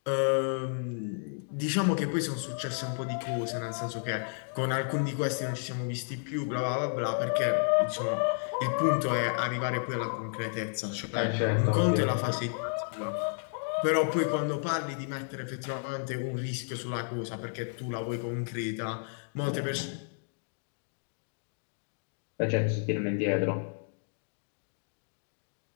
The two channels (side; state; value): right; silent; digital silence